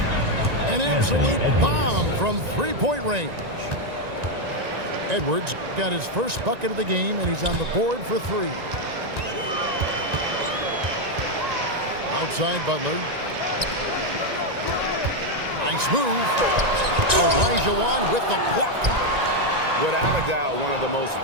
An absolute bomb from three-point range. Edwards got his first bucket of the game, and he's on the board for 3. Outside Butler. Nice move. Elijah with the block. Without a doubt, one of the most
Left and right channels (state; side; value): late; left; 1.9 ms